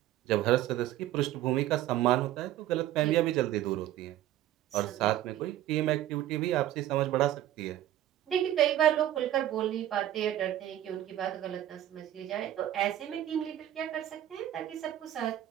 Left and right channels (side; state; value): left; quieter; 13.0 dB